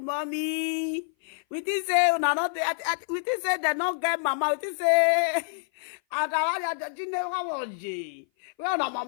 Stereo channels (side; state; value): right; silent; 56 dB below the other